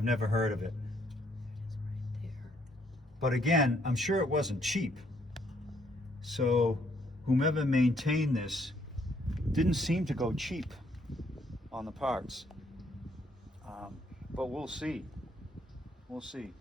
never heard of it. But again, I'm sure it wasn't cheap. So whomever maintained this didn't seem to go cheap on the parts. But we'll see. We'll see.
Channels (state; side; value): normal; both; correlation 0.69